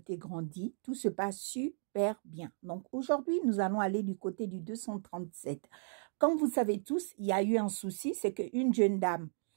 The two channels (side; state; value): left; silent; digital silence